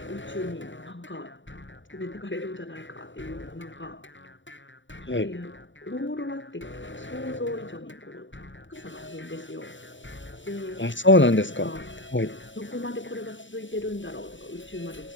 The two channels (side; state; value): right; late; 0.55 ms